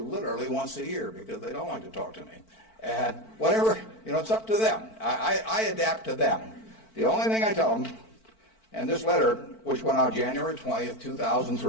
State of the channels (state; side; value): late; right; 4.5 ms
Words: once a year because they don't like to talk to me. And whatever, it's up to them. I adapt to them. The only thing I tell them, and this letter, which went out January 20th,